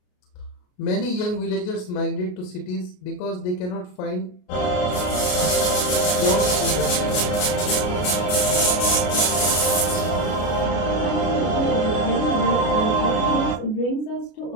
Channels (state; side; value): late; right; 33 ms